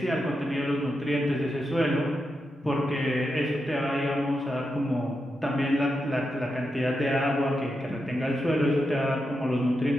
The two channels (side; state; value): both; normal; correlation 0.86